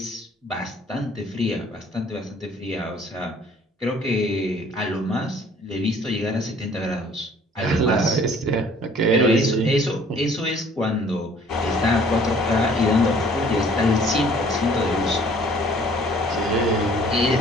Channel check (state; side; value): normal; both; correlation 0.56